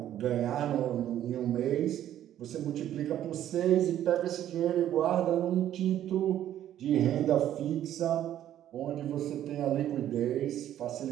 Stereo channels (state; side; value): quieter; left; 11.6 dB